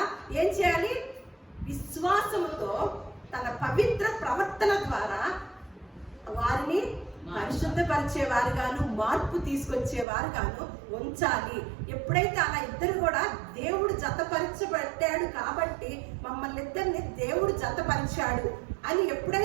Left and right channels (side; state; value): left; drops out; at 10.1 s